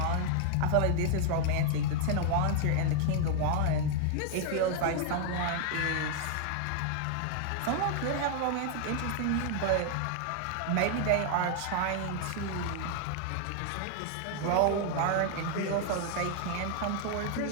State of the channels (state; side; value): different; both; correlation 0.00